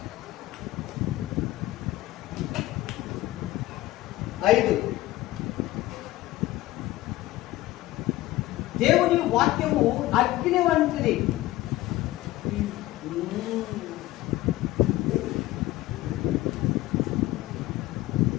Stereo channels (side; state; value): right; quieter; 16.9 dB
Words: దేవుని వాక్యము అగ్ని వంటిది.